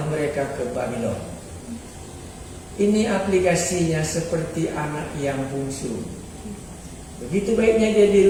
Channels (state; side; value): identical; both; correlation 1.00